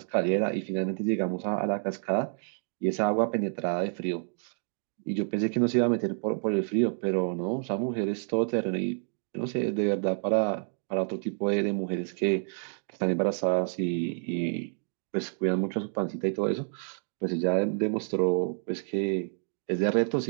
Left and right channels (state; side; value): silent; left; 59 dB below the other